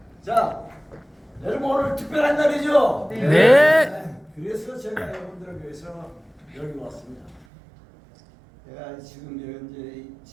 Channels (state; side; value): drops out; left; at 7.5 s